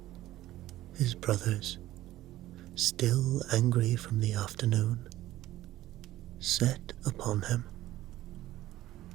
his brothers, still angry from the afternoon, set upon him.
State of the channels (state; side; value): quieter; left; 15.1 dB